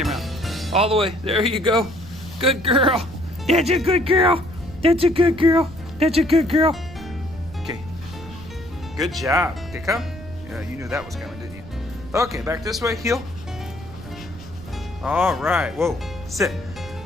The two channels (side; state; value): right; noise; rumble, 16 dB below the sound